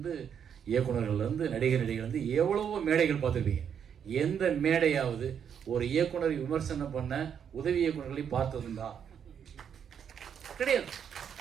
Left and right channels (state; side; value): quieter; left; 8.0 dB